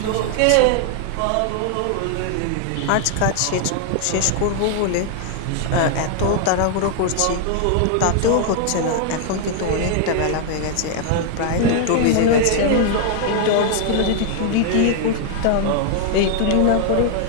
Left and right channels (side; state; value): both; different; correlation 0.00